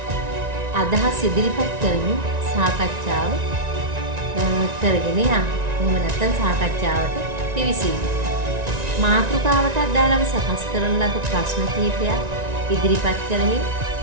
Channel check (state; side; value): late; left; 1.9 ms